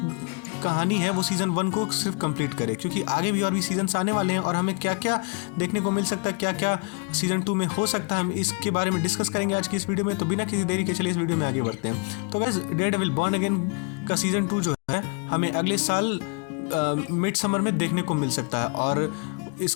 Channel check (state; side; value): quieter; right; 34.2 dB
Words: कहानी है वो सीजन 1 को सिर्फ कंप्लीट करे, क्योंकि आगे भी और भी सीजन्स आने वाले हैं और हमें क्या क्या देखने को मिल सकता है, क्या क्या सीजन 2 में हो सकता है, हम इसके बारे में डिस्कस करेंगे आज की इस वीडियो में। तो बिना किसी देरी के चलिए इस वीडियो में आगे बढ़ते हैं। तो गाइस, डेयरडेविल बॉर्न अगेन का सीजन 2 जो है हमें अगले साल मिड समर में देखने को मिल सकता है और